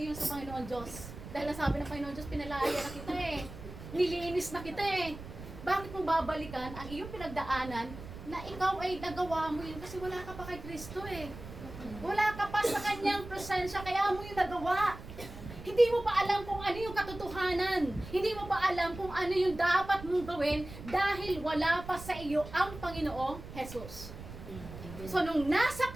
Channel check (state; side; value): noise; right; rumble, 13 dB below the sound